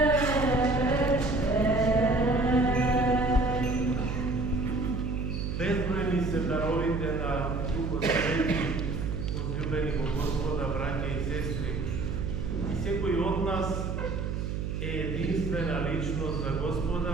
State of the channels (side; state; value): right; noise; hum, 3 dB below the sound